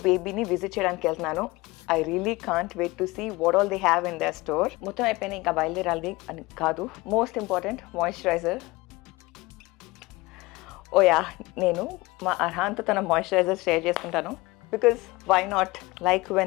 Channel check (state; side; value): quieter; right; 21.8 dB